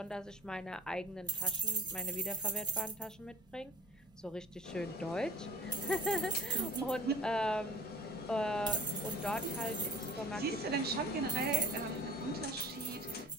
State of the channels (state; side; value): normal; both; correlation 0.45